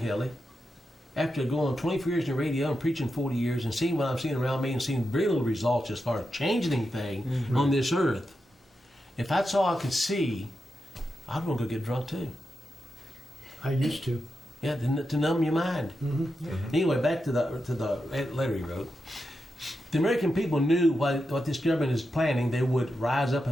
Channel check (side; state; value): both; normal; correlation 0.88